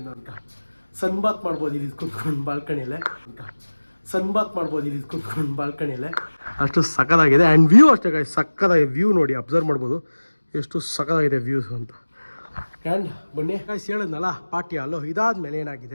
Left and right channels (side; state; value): both; inverted; correlation -1.00